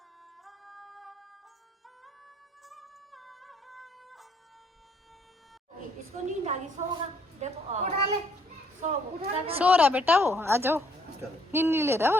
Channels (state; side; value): normal; both; correlation 0.66